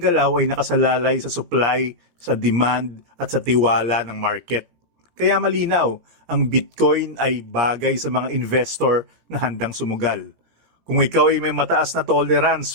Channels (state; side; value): late; left; 17 ms